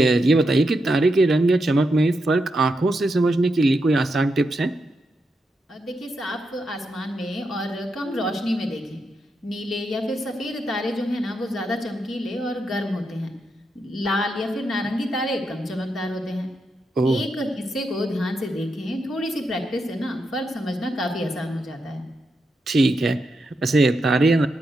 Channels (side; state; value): both; normal; correlation 0.84